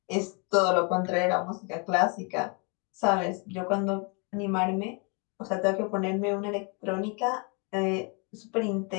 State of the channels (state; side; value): quieter; right; 34.3 dB